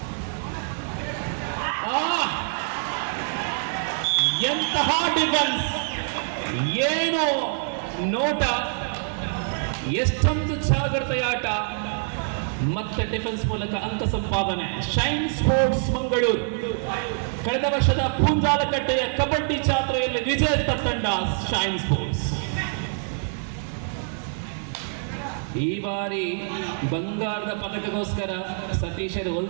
ಎಂತಹ ಡಿಫೆನ್ಸ್, ಏನು ನೋಟ, ಎಷ್ಟೊಂದು ಜಾಗ್ರತೆಯ ಆಟ, ಮತ್ತೆ ಡಿಫೆನ್ಸ್ ಮೂಲಕ ಅಂಕ ಸಂಪಾದನೆ. ಶೈನ್ ಸ್ಪೋರ್ಟ್ಸ್ ಮಂಗಳೂರು ಕಳೆದ ವರ್ಷದ ಪೂಂಜಾಲಕಟ್ಟೆಯ ಕಬಡ್ಡಿ ಜಾತ್ರೆಯಲ್ಲಿ ವಿಜೇತ ತಂಡ ಶೈನ್ ಸ್ಪೋರ್ಟ್ಸ್. ಈ ಬಾರಿ ಬಂಗಾರದ ಪದಕಗೋಸ್ಕರ ಸತೀಶರು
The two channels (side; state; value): left; silent; digital silence